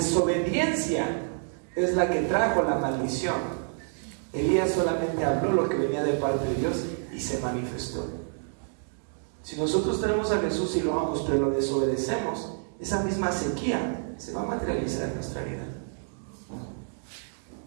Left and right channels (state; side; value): silent; left; 59 dB below the other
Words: es la que trajo la maldición. Elías solamente habló lo que venía de parte de Dios y se manifestó. Si nosotros tenemos a Jesús y lo amamos, pero lo desobedecemos, esa misma sequía se va a materializar en nuestra vida.